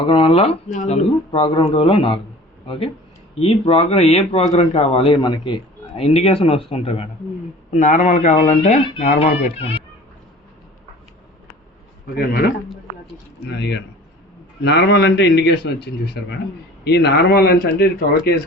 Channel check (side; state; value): both; normal; correlation 0.44